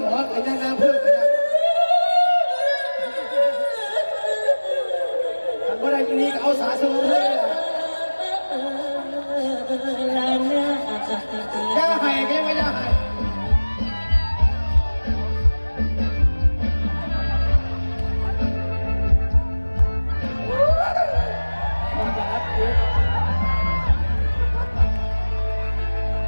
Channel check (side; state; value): both; inverted; correlation -1.00